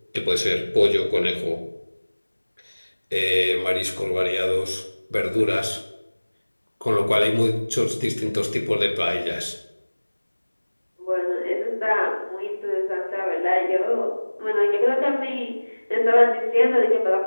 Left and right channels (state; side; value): inverted; both; correlation -1.00